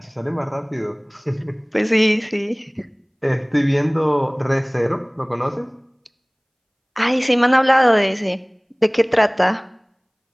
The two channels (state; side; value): identical; both; correlation 1.00